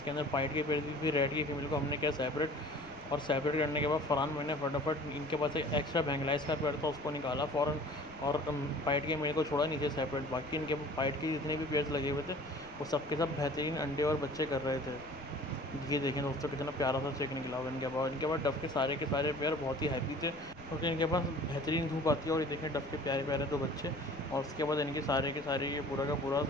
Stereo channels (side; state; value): left; noise; rumble, 21 dB below the sound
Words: अंदर पाइट के पेड़ भी। रेड की फीमेल को हमने किया सेपरेट, और सेपरेट करने के बाद फ़रहान मैंने फटाफट इनके पास एक एक्स्ट्रा बैंगलाइज का पेड़ था उसको निकाला फ़ौरन, और पाइट के मेरे को छोड़ा नीचे सेपरेट। बाकी इनके पाइट के जितने भी पेयर्स लगे हुए थे वो सब के सब बेहतरीन अंडे और बच्चे कर रहे थे। ये देखें दोस्तों कितना प्यारा सा चेक निकला हुआ इनके पास डफ के सारे पेयर बहुत ही हैप्पी थे, क्योंकि इनके पास बेहतरीन धूप आती है। और ये देखें डफ के प्यारे प्यारे दो बच्चे, और उसके बाद इनके सारे के सारे ये पूरा का पूरा